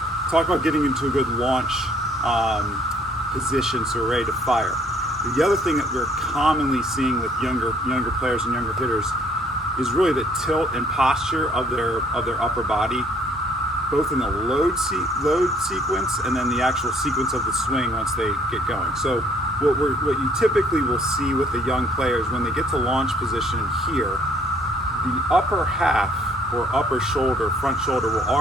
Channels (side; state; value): both; normal; correlation 0.62